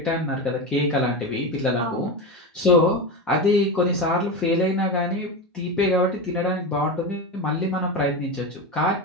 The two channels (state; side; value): normal; both; correlation 0.19